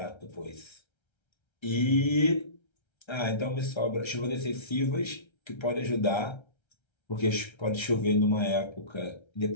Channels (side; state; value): right; late; 1.3 ms